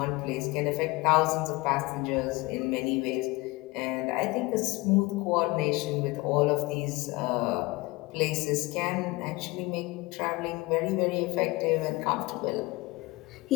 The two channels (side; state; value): right; quieter; 22.5 dB